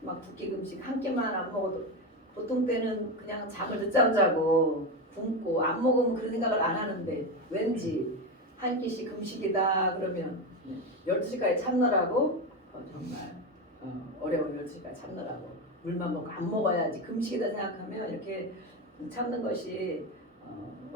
막 두 끼 금식 한 끼만 안 먹어도 보통 때는 그냥 잠을 늦잠 자고 굶고 안 먹으면 그런 생각을 안 하는데 왠지 한 끼씩 금식이다 그러면 12시까지 참느라고 정말 어려운 12시까지 참느라고 물만 먹고 안 먹어야지 금식이다 생각하면 이렇게 참는 것이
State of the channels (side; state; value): both; normal; correlation 0.16